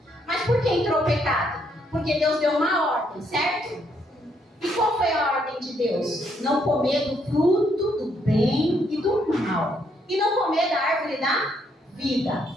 Mas por que entrou o pecado? Porque Deus deu uma ordem, certo? E qual foi a ordem de Deus? Não comer do fruto do bem e do mal. E não comer da árvore da vida.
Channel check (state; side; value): normal; both; correlation 0.73